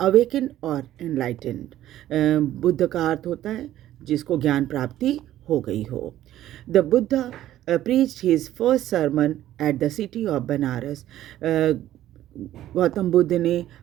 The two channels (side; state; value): left; quieter; 13.2 dB